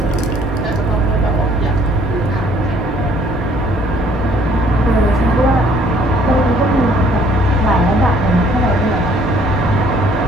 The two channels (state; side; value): normal; both; correlation 0.60